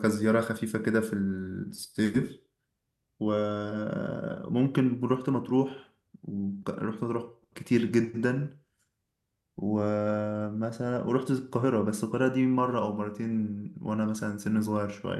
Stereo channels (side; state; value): both; identical; correlation 1.00